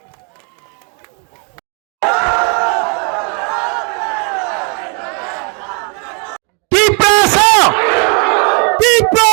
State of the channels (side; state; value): left; quieter; 37.8 dB